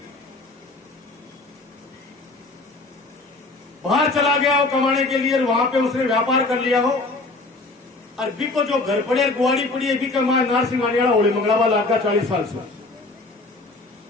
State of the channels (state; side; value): quieter; right; 3.3 dB